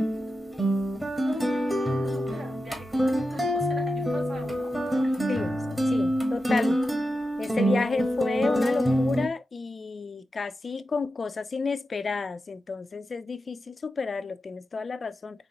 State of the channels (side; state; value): both; normal; correlation 0.90